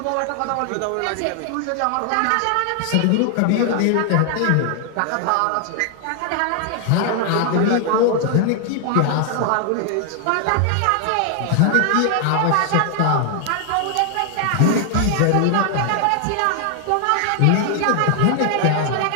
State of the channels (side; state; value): both; different; correlation 0.00